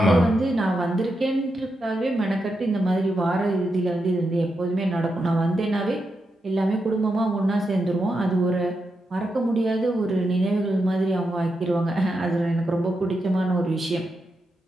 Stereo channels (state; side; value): normal; both; correlation 0.86